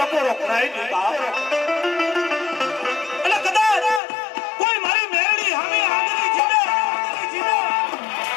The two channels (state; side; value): drops out; right; at 4.0 s